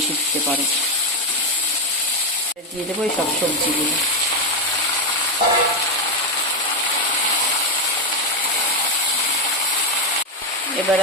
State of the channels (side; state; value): both; normal; correlation 0.07